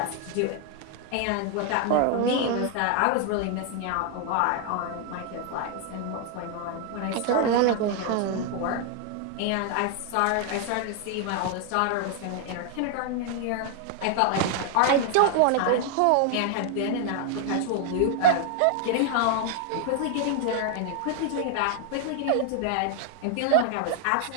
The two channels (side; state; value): both; different; correlation 0.00